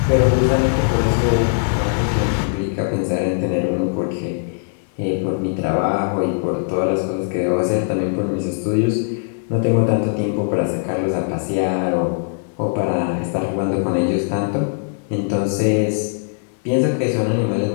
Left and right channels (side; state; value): right; silent; 62 dB below the other